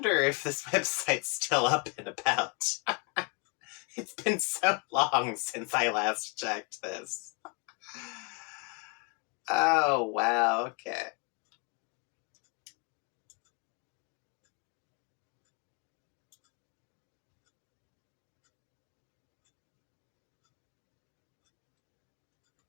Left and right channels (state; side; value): quieter; right; 34.4 dB